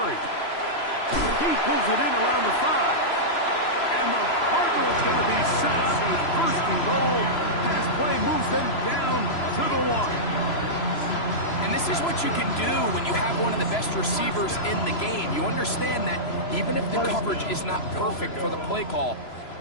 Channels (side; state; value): right; late; 3.0 ms